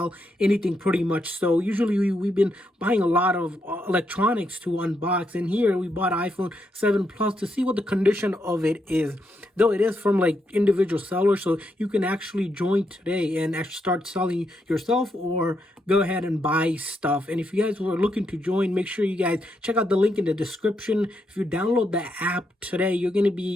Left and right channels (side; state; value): both; normal; correlation 0.80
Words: anything pretty much. So usually we've been buying a lot of electronics to unbox. And here we bought iPhone 7 Plus to see what the condition of it is. Though it is from like individual sellers, so you can actually join today and actually start selling yourself or go ahead and buy stuff. And if you guys were looking to join, make sure you guys check out the link in the description. If you download the app today, you're going to